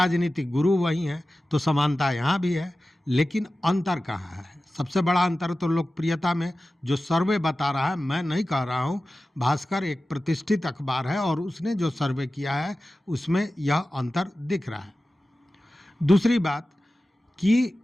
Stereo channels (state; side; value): normal; both; correlation 0.95